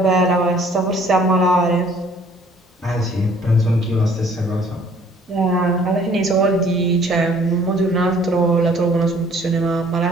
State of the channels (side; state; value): both; normal; correlation 0.57